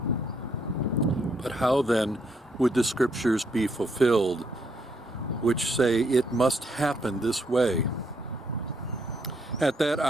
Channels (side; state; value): both; normal; correlation 0.73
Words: But how then would the Scriptures be fulfilled, which say it must happen this way?" At that